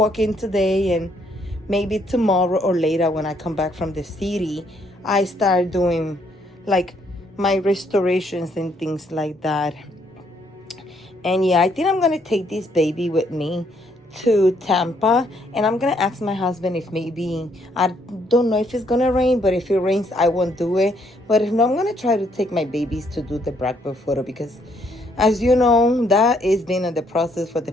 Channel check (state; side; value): normal; both; correlation 0.70